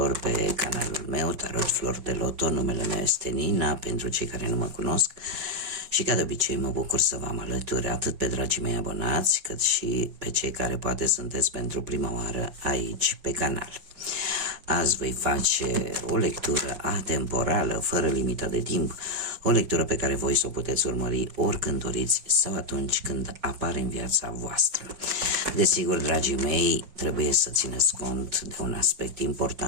pe canalul meu, Tarot Flor de Loto. Numele meu este Nina, pentru cei care nu mă cunosc. Și ca de obicei mă bucur să vă am alături atât pe dragii mei abonați, cât și pe cei care poate sunteți pentru prima oară aici pe canal. Azi voi face o lectură atemporală, fără limită de timp, o lectură pe care voi să o puteți urmări oricând doriți sau atunci când apare în viața voastră. Desigur, dragii mei, trebuie să țineți cont de un aspect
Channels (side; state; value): left; late; 5.6 ms